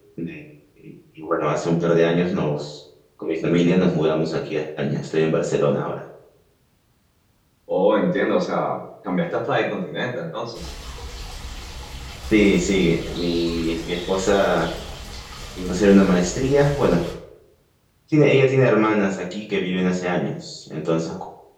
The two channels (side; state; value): both; identical; correlation 1.00